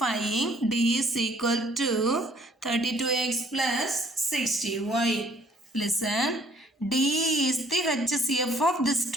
D is equal to 32X plus 60Y. Listen, D is the HCF of this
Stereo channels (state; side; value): normal; both; correlation 0.61